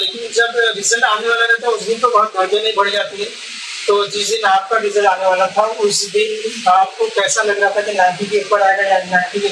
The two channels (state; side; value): identical; both; correlation 1.00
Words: जब रिजल्ट आने वाला रहता है उस दिन तो बहुत धड़कने बढ़ जाती है। तो जिस दिन आपका रिजल्ट आने वाला था उस दिन आपको कैसा लग रहा था कि 90 के ऊपर आएगा या 90 के